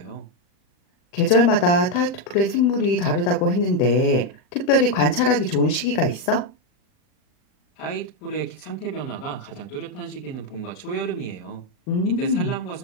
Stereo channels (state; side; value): late; right; 38 ms